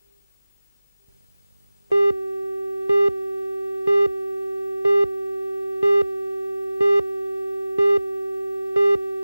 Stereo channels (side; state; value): both; inverted; correlation -0.98